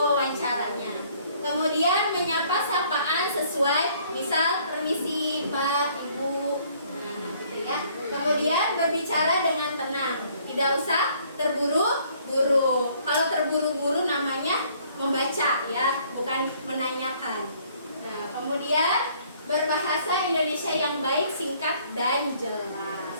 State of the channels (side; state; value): both; inverted; correlation -0.61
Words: Kemudian menyapa sapaan sesuai, misal permisi Pak, Ibu, nah gitu ya. Kemudian berbicara dengan tenang, tidak usah terburu-buru. Kalau terburu-buru namanya membaca ya, bukan menanyakan. Nah, kemudian berbahasa Indonesia yang baik, singkat, dan jelas.